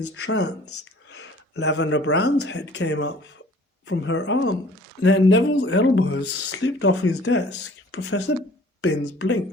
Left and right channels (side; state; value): both; normal; correlation 0.52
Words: trance. Lavender Brown's head came up from her arm. Then Neville's elbows slipped off his desk. Professor Binns